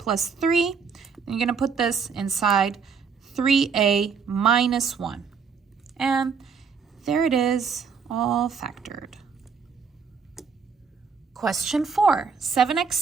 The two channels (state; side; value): quieter; left; 5.8 dB